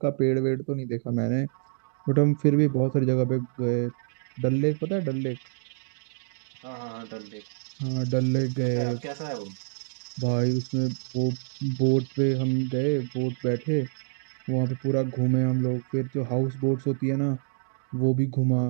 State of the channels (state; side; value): silent; left; digital silence